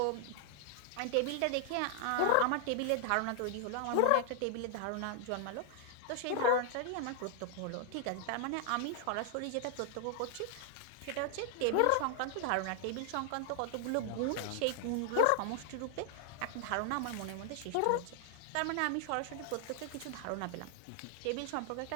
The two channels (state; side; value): different; both; correlation 0.00